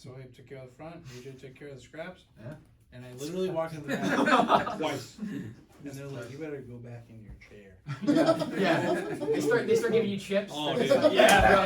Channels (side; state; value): both; identical; correlation 1.00